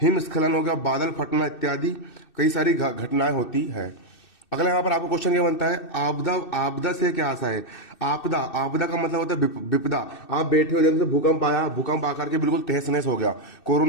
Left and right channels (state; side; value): late; right; 2.6 ms